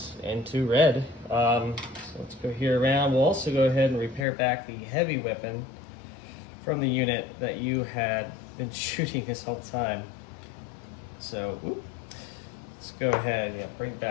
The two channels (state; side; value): drops out; right; at 4.2 s